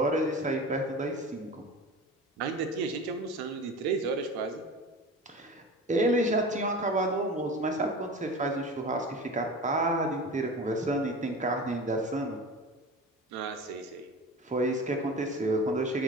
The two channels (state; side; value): normal; both; correlation 0.34